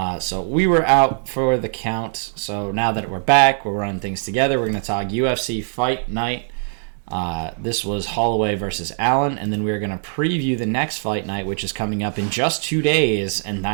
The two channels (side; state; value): left; silent; digital silence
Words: So we were out for the count. So now that we're back, we're running things together. We're going to talk UFC Fight Night. This was Holloway versus Allen, and then we're going to preview the next fight night, which is coming up in just 2 days, and